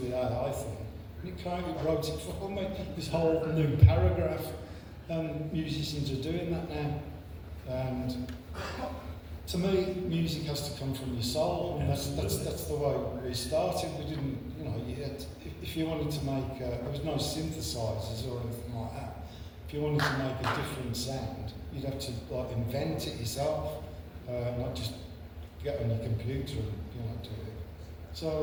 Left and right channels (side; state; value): both; identical; correlation 1.00